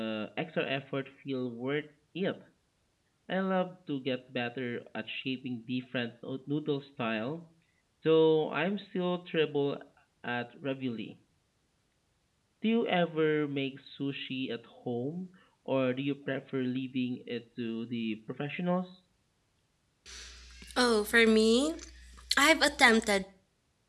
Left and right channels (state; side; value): identical; both; correlation 1.00